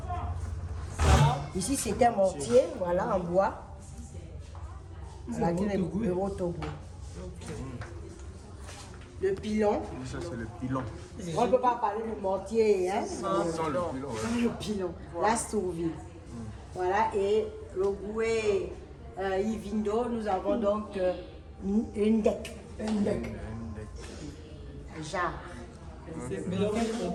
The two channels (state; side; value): identical; both; correlation 1.00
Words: Ici, c'est un mortier, voilà, en bois. Voilà, le Rotogo. Le pilon. Ça, c'est le pilon. On ne peut pas parler du mortier, hein? Sans le pilon, ouais. Le pilon. La sourvie. Voilà, et le Goué Ivindo, nous avons donc une deck. Un jarre. Mais donc, on